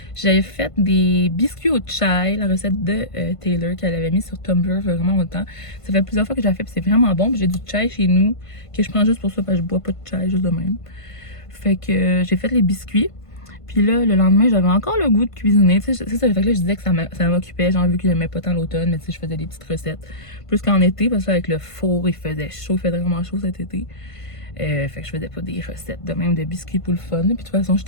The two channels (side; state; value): right; late; 1.5 ms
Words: j'avais fait des biscuits au chai, la recette de Taylor qu'elle avait mis sur Tumblr vraiment longtemps. Ça fait plusieurs fois que j'ai fait, puis c'est vraiment bon. Puis j'ai du chai chez nous, que je prends juste pour ça, parce que je bois pas de chai, juste de même. Fait que j'ai fait les biscuits. Puis là, le lendemain, j'avais encore le goût de cuisiner. Tu sais, c'est ça, fait que là, je disais que ça m'occupait. J'ai vu que j'aimais pas tant l'automne, mais tu sais, je faisais des petites recettes. Plus qu'en été, parce que avec le four, il faisait chaud, il faisait vraiment chaud cet été. Fait que je faisais pas des recettes de même de biscuits pour le fun. Puis de toute façon,